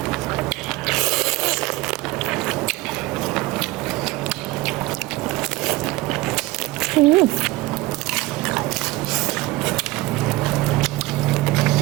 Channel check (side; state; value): left; quieter; 19.7 dB